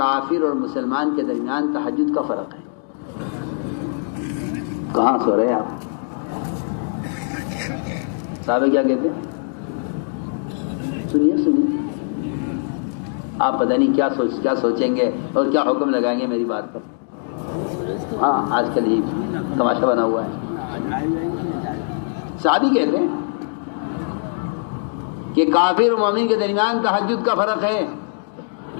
اور مسلمان کے درمیان تہجد کا فرق ہے. کہاں سو رہے آپ؟ صحابہ کیا کہتے ہیں؟ سنیے, آپ پتہ نہیں کیا سوچیں گے اور کیا حکم لگائیں گے میری بات پر. ہاں, آج کل یہ تماشا بنا ہوا ہے. صحابی کہتے ہیں کہ کافر و مومن کے درمیان تہجد کا فرق ہے.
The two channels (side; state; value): right; silent; digital silence